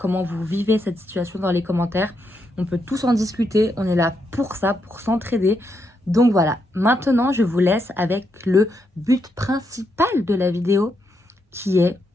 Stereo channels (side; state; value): both; normal; correlation 0.80